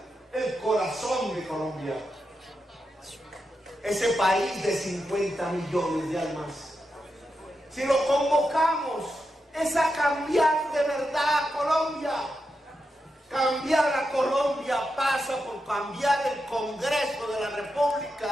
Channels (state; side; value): normal; both; correlation 0.87